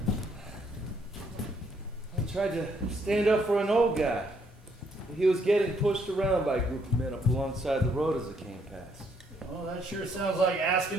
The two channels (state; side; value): normal; both; correlation 0.70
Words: I tried to stand up for an old guy. He was getting pushed around by a group of men up alongside the road as it came past. Well, that sure sounds like